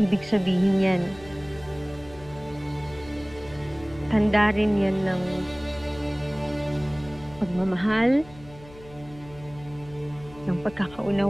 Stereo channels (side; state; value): left; noise; hum, 20 dB below the sound